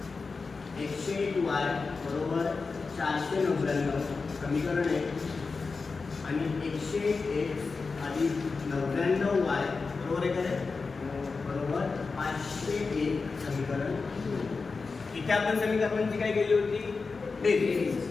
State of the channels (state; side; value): quieter; right; 4.4 dB